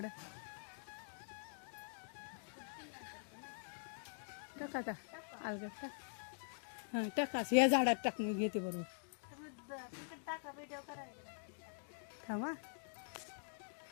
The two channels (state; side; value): silent; right; digital silence